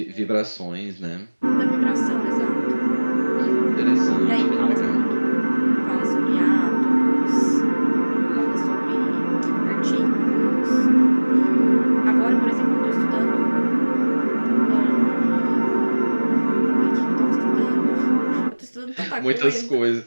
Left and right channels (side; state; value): both; inverted; correlation -1.00